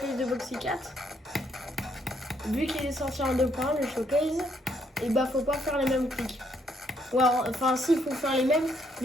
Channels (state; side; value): normal; both; correlation 0.72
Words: de Boxy 4. Vu qu'il est sorti en 2.1, le showcase, et bah, faut pas faire les mêmes clics. Ouais, enfin, si, il faut faire les mêmes,